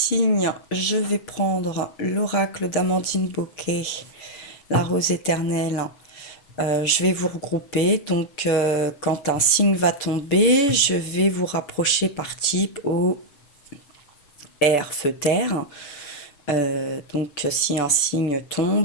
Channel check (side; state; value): right; late; 6.9 ms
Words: je vais prendre l'oracle d'Amandine Bocquet, la rose éternelle. Je vais vous regrouper, donc quand un signe va tomber, je vais vous rapprocher par type au air, feu, terre. Donc si un signe